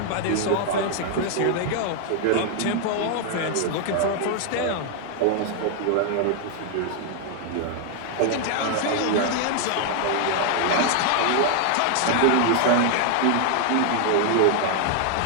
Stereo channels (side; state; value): both; different; correlation 0.00